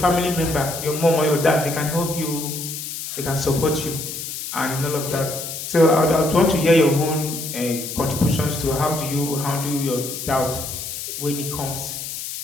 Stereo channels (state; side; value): noise; left; hiss, 7 dB below the sound